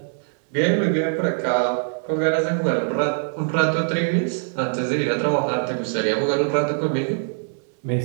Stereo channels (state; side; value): silent; left; digital silence